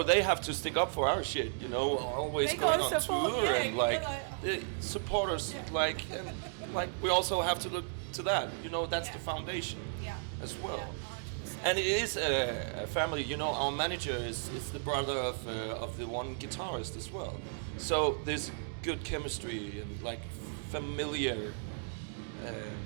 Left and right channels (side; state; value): left; silent; digital silence